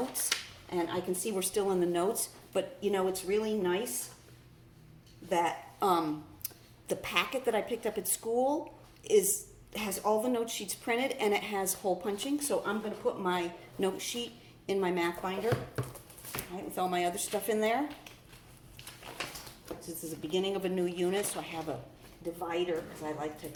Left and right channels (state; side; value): identical; both; correlation 1.00